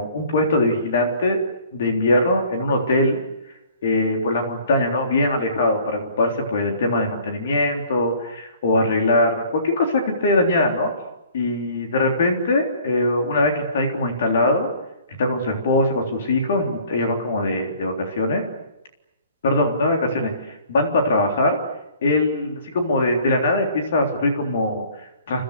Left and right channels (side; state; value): both; inverted; correlation -0.54